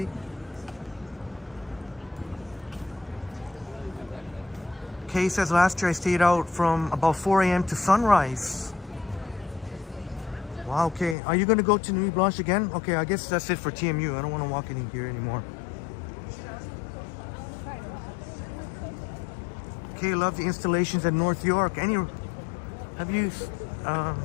Kay says last year I stayed out from about 4 a.m. to sunrise. Wow, okay. Are you going to go to Nuit Blanche again? Okay, I guess that's it for TMU. I don't want to walk in here anymore. Okay, love the installations at North York. Have you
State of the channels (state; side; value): drops out; right; at 11.2 s